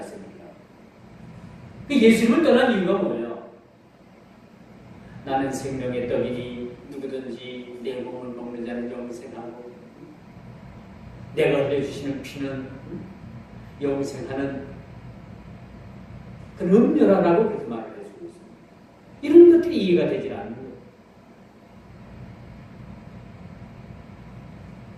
그 예수님을 떠난 이유가 뭐예요? 나는 생명의 떡이니 누구든지 내 몸을 먹는 자는 영생하고 내가 흘려주시는 피는 영생하는 그런 음료라고 그렇게 말을 해주고 있습니다. 이런 것들이 이해가 되지 않는 거예요.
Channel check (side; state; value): both; identical; correlation 1.00